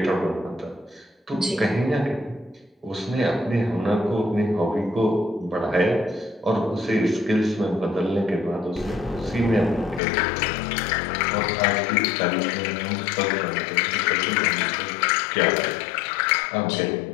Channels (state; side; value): drops out; right; at 10.0 s